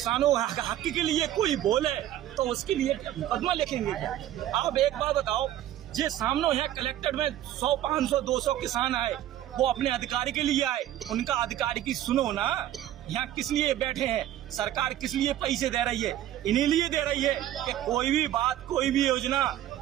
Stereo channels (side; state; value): left; quieter; 12.6 dB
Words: हक के लिए कोई बोले तो उसके लिए मुकदमा लिखेंगे क्या? आप एक बात बताओ, जे सामने यहाँ कलेक्टर में 100, 500, 200 किसान आए, वो अपने अधिकारी के लिए आए, उनका अधिकारी की सुनो ना। यहाँ किस लिए बैठे हैं? सरकार किस लिए पैसे दे रही है? इन्हीं लिए दे रही है कि कोई भी बात, कोई भी योजना,